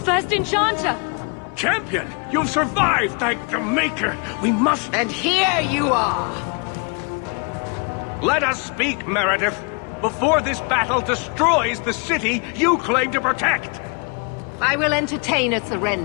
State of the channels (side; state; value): right; quieter; 34.7 dB